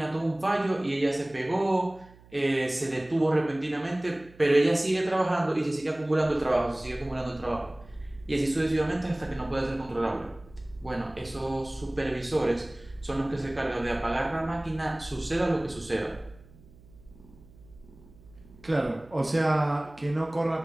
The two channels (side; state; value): right; noise; hum, 24 dB below the sound